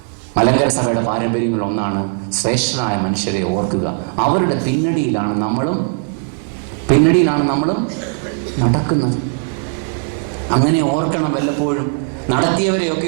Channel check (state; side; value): silent; left; 55 dB below the other